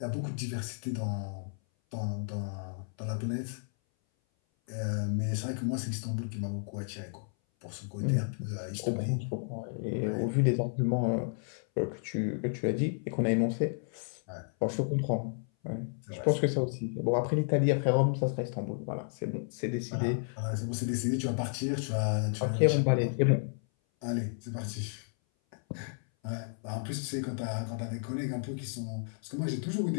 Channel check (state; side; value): silent; right; 56 dB below the other